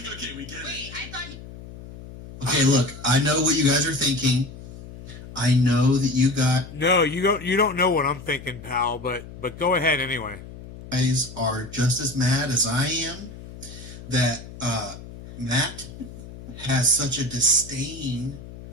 okay, we get it. I thought you... Okay, look, I know what you guys are thinking. I know that you No, you don't know what I'm thinking, pal, but go ahead anyway. guys are just as mad as I am that Matt has such a disdain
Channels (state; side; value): noise; left; hum, 15 dB below the sound